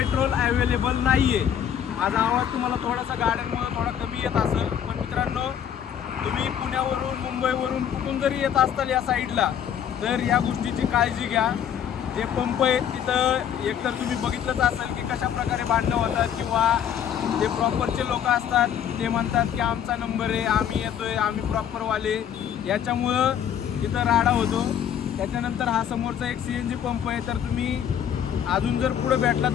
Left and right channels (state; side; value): quieter; right; 9.2 dB